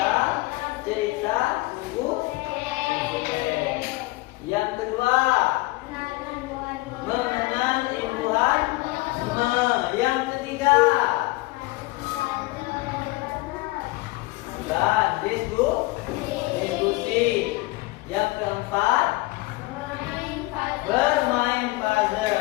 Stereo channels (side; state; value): right; quieter; 21.5 dB